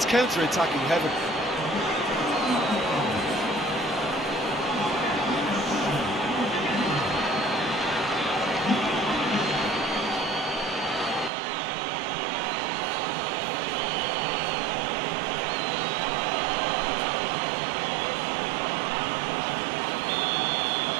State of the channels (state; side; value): drops out; left; at 11.3 s